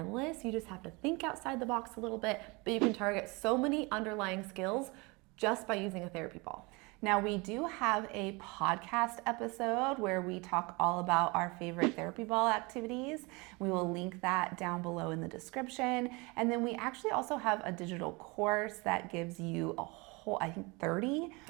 You just have to think outside the box a little bit, but you can target so many underlying skills just by using a therapy ball. Now, we do have a podcast episode where we talk all about our favorite therapy ball activities. We will link that down below in the description. And then we actually also have a digital course that gives you a whole, I think 35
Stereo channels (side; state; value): left; quieter; 26.8 dB